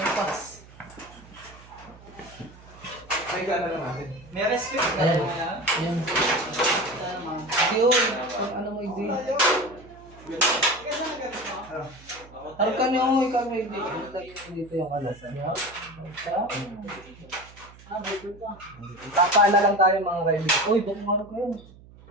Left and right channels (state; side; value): noise; right; hum, 22 dB below the sound